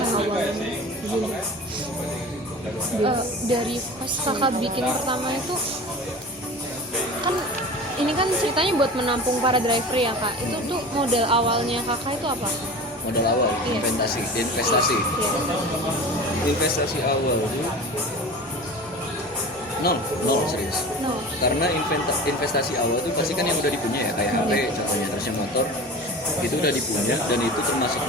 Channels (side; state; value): both; normal; correlation 0.35